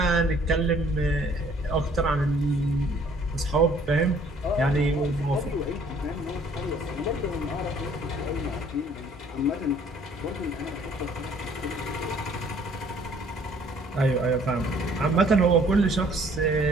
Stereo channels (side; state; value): both; normal; correlation 0.58